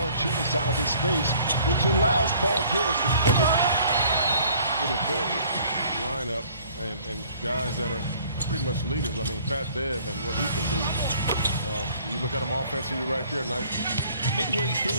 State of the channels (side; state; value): both; inverted; correlation -0.55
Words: out of his space, which allows Paul George to put it with a big lineup and guys that are pretty much leaders. I mean, Pat Bev and what he can do. You look at him offensively right there. Nice. Midway